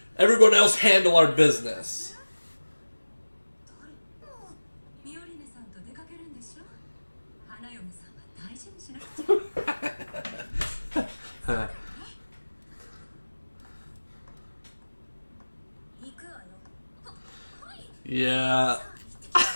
Everyone else handle our business. Yeah.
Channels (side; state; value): both; inverted; correlation -1.00